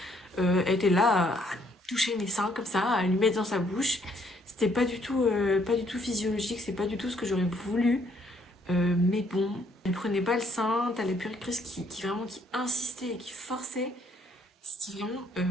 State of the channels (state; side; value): normal; both; correlation 0.67